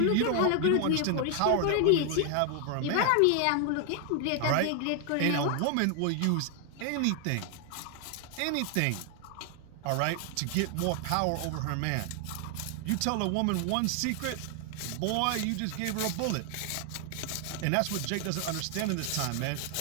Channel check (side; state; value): both; different; correlation 0.00